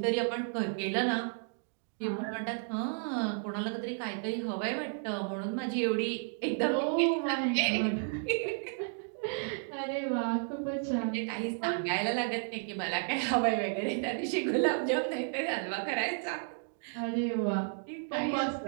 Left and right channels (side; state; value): left; silent; 56 dB below the other